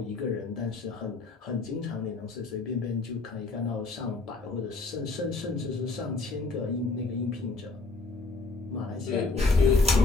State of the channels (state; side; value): quieter; right; 3.8 dB